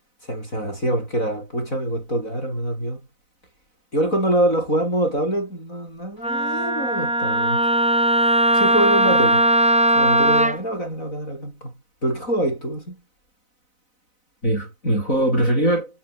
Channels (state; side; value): late; right; 4.0 ms